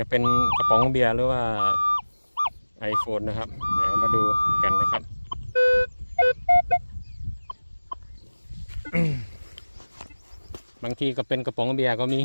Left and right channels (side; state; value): both; inverted; correlation -1.00